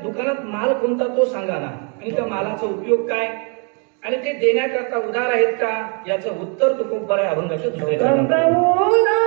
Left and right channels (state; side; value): quieter; left; 37.6 dB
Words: दुकानात माल कोणता तो सांगा ना. आणि त्या मालाचा उपयोग काय आणि ते देण्याकरता उदार आहेत का याचं उत्तर तुकोबराय अभंगाच्या दुसऱ्या